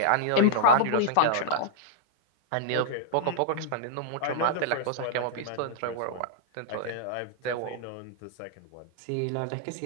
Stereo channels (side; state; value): both; different; correlation -0.01